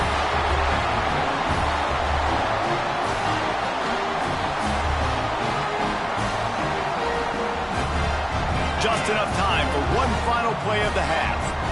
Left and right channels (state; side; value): identical; both; correlation 1.00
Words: Just enough time for one final play of the half.